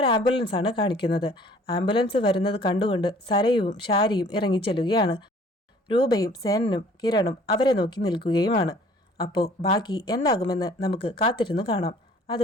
ആംബുലൻസാണ് കാണിക്കുന്നത്. ആംബുലൻസ് വരുന്നത് കണ്ടുകൊണ്ട് സരയുവും ഷാരിയും ഇറങ്ങിച്ചെല്ലുകയാണ്. രൂപയും സേനനും കിരണും അവരെ നോക്കി നിൽക്കുകയുമാണ്. അപ്പോൾ ബാക്കി എന്താകുമെന്ന് നമുക്ക് കാത്തിരുന്നു കാണാം.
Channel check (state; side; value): normal; both; correlation 0.54